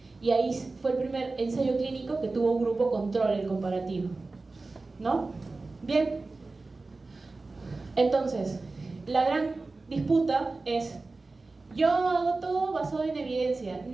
Y ahí fue el primer ensayo clínico que tuvo un grupo control, el comparativo. ¿No? Bien. Entonces, la gran disputa es: yo hago todo basado en evidencia,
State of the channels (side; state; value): left; quieter; 3.5 dB